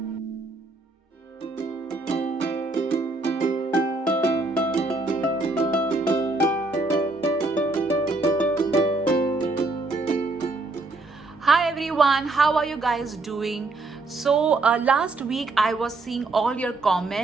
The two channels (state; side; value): quieter; left; 3.2 dB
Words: everyone, how are you guys doing? Last week I was seeing all your